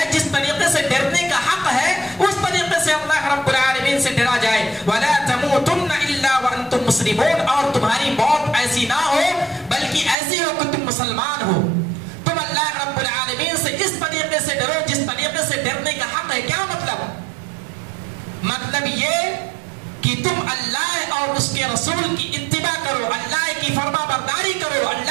جس طریقے سے ڈرنے کا حق ہے، اس طریقے سے اللہ رب العالمین سے ڈرا جائے۔ وَلَا تَمُوتُنَّ إِلَّا وَأَنْتُمْ مُسْلِمُونَ، اور تمہاری موت ایسی نہ ہو بلکہ ایسی ہو کہ تم مسلمان ہو۔ تم اللہ رب العالمین سے اس طریقے سے ڈرو جس طریقے سے ڈرنے کا حق ہے۔ کیا مطلب؟ مطلب یہ کہ تم اللہ اور اس کے رسول کی اتباع کرو، اللہ کی فرما برداری کرو،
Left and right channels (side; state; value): left; drops out; at 10.2 s